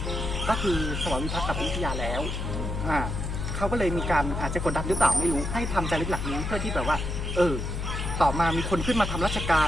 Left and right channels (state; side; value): noise; left; hum, 3 dB below the sound